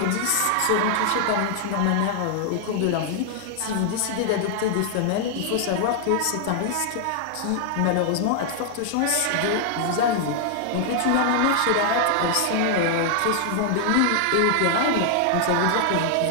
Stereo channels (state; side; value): different; both; correlation 0.00